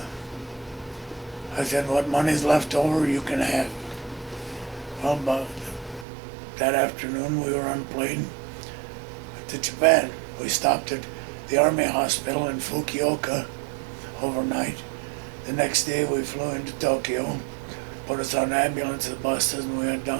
I said, "What money's left over, you can have." Well, about that afternoon, we were on a plane to Japan. We stopped at the Army Hospital in Fukuoka overnight. The next day, we flew into Tokyo, put us on ambulance buses, and we went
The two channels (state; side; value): drops out; left; at 6.1 s